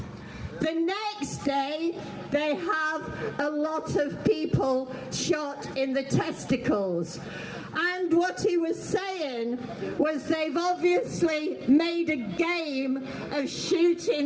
The next day they have a lot of people shot in the testicles. And what he was saying was they've obviously made a game of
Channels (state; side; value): identical; both; correlation 1.00